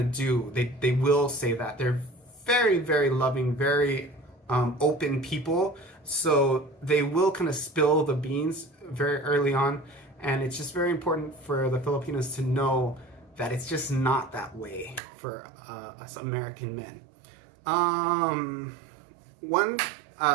do. They will say that. They're very, very loving, very open people. So they will kind of spill the beans very early on. And it's just very important for the Filipinos to know that it's just not that way for us American men.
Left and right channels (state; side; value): drops out; left; at 15.0 s